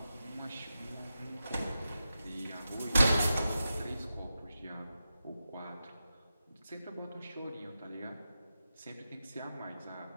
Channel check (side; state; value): both; inverted; correlation -0.90